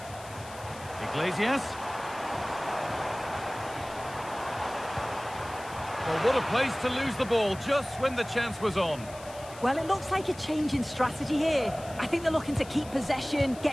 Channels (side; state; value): left; noise; hiss, 18 dB below the sound